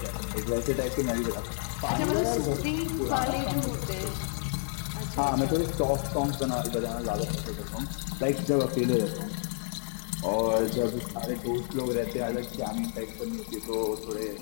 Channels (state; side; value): silent; right; digital silence